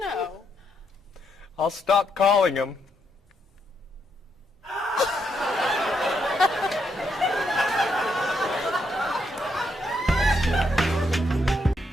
I'll stop calling him.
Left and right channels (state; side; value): normal; both; correlation 0.77